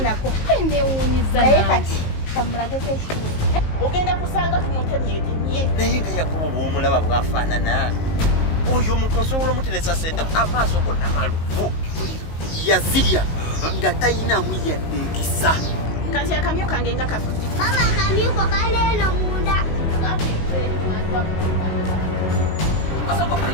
Nako ende wunyiza naye kati kamulagete ekituufu ogenda kusanga tumutemyetemye naye nga Yakobo bw'omulaba bwafaanana oyo omuntu osobola omuteresa sente amaaso gonna maluvu yazirya nga tayinamu yadde ekisa kati akamyu kange nga kafudde mama akamyuko kaleeno munda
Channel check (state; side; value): late; right; 19 ms